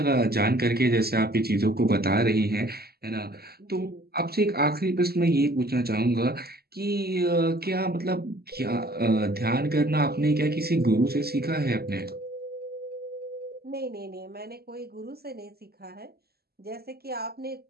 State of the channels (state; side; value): late; left; 0.46 ms